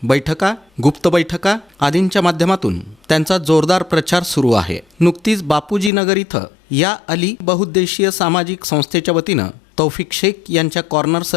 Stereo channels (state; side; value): drops out; right; at 5.9 s